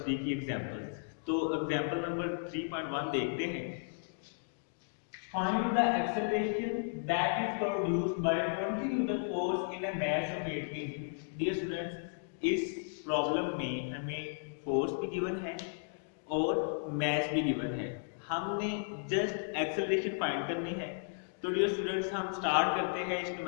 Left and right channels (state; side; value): silent; right; digital silence